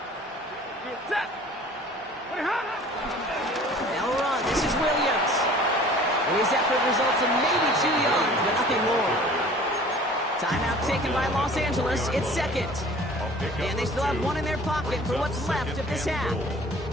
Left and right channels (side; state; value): both; normal; correlation 0.47